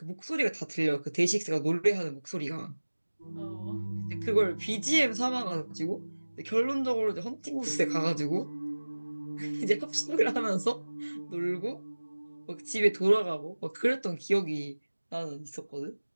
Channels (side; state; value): both; inverted; correlation -1.00